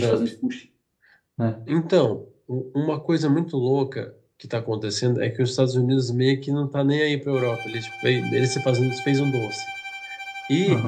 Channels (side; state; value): both; identical; correlation 1.00